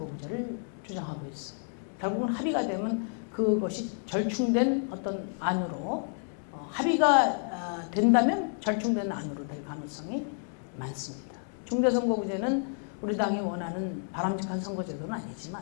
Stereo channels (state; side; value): silent; right; 58 dB below the other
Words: 주장하고 있어요. 결국은 합의가 되면 그것이 절충된 어떤 안으로 합의가 된다면 절충된 안으로 될 가능성이 많습니다. 중대선거구제는 우리 당이 원하는 바람직한 선거제도는